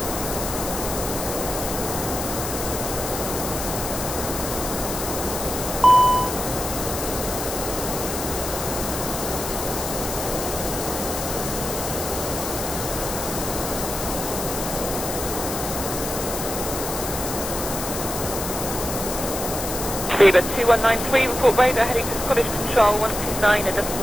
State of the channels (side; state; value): left; noise; hiss, 5 dB below the sound